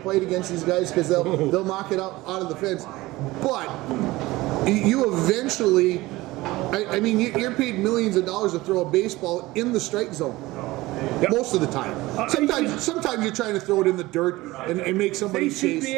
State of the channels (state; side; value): quieter; left; 19.4 dB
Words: against these guys because they'll knock it out of the fence, but you eventually, I mean, you're paid millions of dollars to throw a baseball in the strike zone. Yep. Most of the time. Sometimes you're trying to throw it in the dirt and make somebody they should chase. be